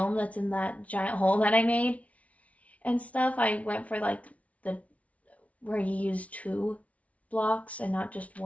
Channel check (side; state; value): right; late; 0.066 ms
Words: that's in that giant hole that I made and stuff. I went for like where you use 2 blocks and not just